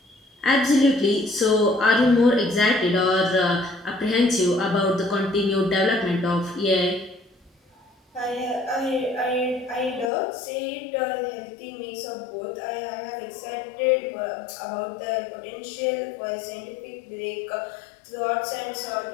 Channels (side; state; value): right; drops out; at 10.1 s